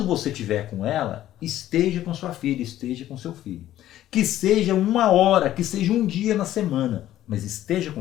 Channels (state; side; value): quieter; right; 13.1 dB